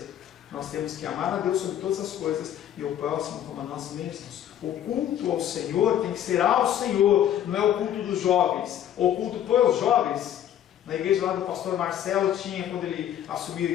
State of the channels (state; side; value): quieter; right; 10.7 dB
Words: Nós temos que amar a Deus sobre todas as coisas e o próximo como a nós mesmos. O culto ao Senhor tem que ser ao Senhor, não é o culto dos jovens. O culto para os jovens. Na igreja lá do pastor Marcelo tinha, quando ele assumiu a